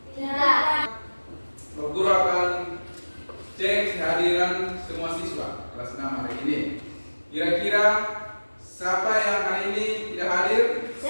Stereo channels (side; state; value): both; inverted; correlation -1.00